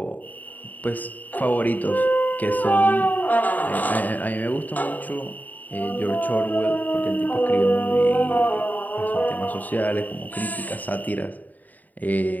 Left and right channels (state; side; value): late; right; 0.082 ms